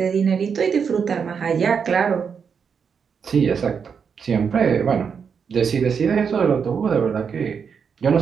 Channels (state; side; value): quieter; left; 6.5 dB